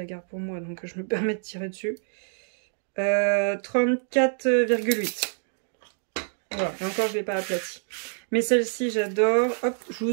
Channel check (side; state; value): left; silent; digital silence